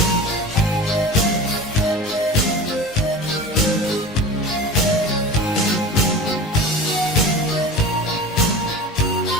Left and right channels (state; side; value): normal; both; correlation 0.34